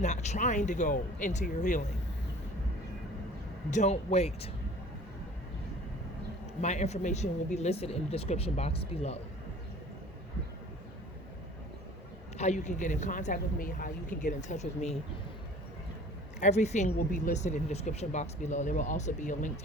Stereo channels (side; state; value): both; normal; correlation 0.47